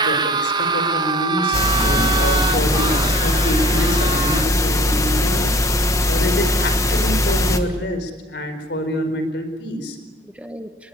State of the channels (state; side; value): normal; both; correlation 0.48